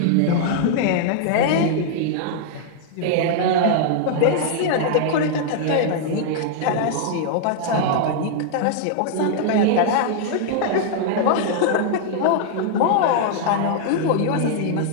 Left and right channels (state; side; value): different; both; correlation -0.01